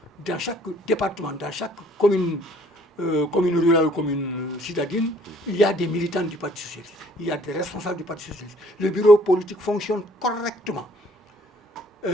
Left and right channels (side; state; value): both; normal; correlation 0.60